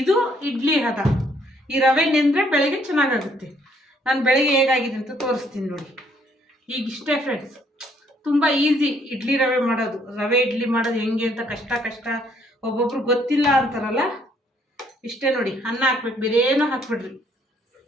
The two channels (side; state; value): both; normal; correlation 0.67